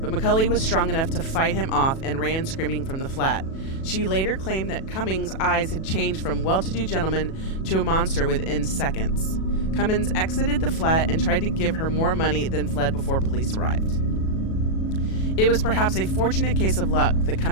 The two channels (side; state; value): right; late; 37 ms